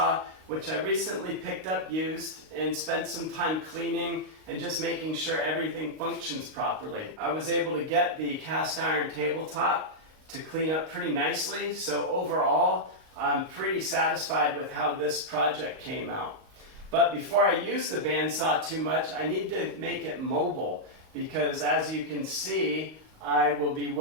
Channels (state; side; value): late; left; 38 ms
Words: which I recently picked up used and spent some time cleaning and just making sure everything functions properly. I was able to get the cast iron tabletop to clean up pretty nicely, so overall, I'm pretty satisfied with how this project came out. But before I use the bandsaw too much, I need to make it mobile, because as you can see, I will be